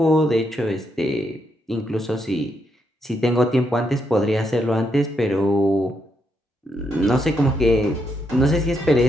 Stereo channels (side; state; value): both; normal; correlation 0.79